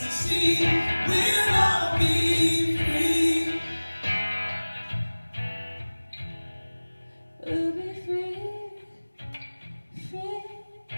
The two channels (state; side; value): inverted; both; correlation -1.00